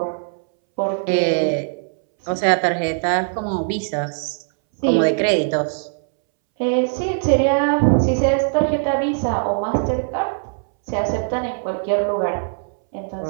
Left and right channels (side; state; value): left; silent; 64 dB below the other